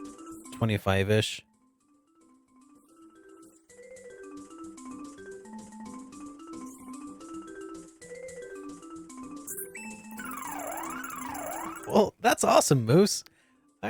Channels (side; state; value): both; identical; correlation 1.00